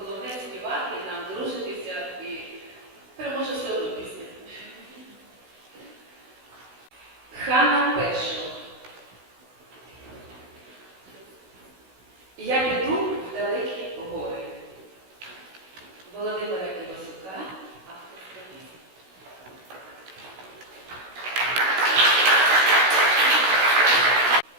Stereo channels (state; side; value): late; left; 16 ms